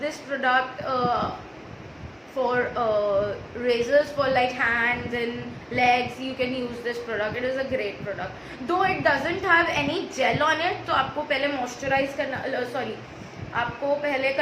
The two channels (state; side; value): identical; both; correlation 1.00